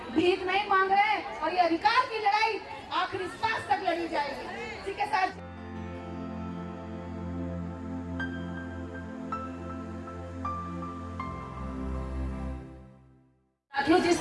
भीख नहीं मांग रहे हैं। और ये अधिकार की लड़ाई आखिरी सांस तक लड़ी जाएगी। ठीक है सर। साथियों,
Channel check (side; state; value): both; identical; correlation 1.00